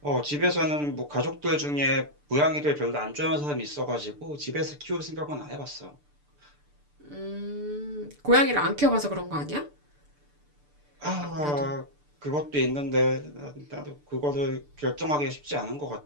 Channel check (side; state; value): left; late; 6.8 ms